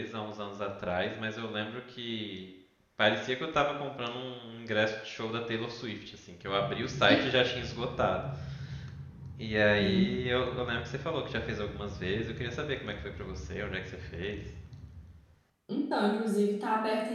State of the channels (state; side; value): identical; both; correlation 1.00